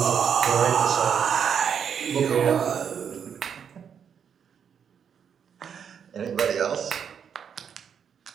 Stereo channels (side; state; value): left; quieter; 7.6 dB